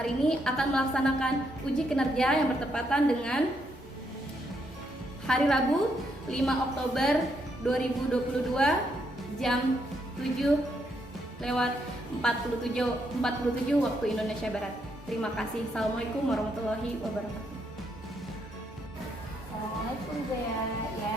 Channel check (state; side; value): normal; both; correlation 0.76